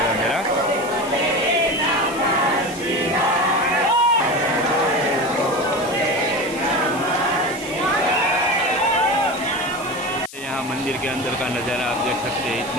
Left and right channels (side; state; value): left; noise; hiss, 16 dB below the sound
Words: मेरा। यहाँ मंदिर के अंदर का नज़ारा आप देख सकते हैं,